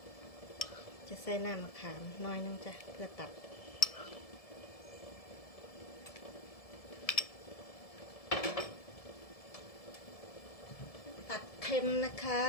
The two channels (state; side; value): late; right; 1.7 ms